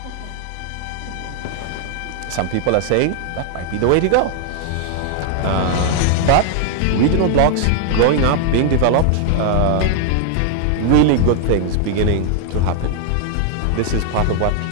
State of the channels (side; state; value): both; different; correlation 0.00